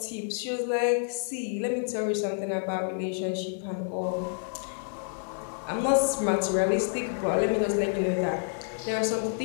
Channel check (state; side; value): silent; right; digital silence